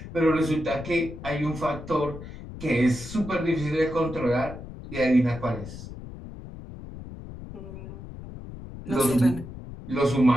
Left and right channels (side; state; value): left; noise; rumble, 12 dB below the sound